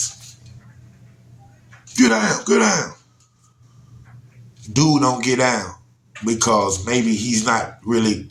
Get down. Dude don't get down because maybe he's not really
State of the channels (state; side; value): identical; both; correlation 1.00